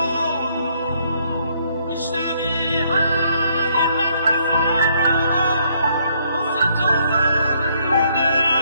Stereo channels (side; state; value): both; inverted; correlation -0.69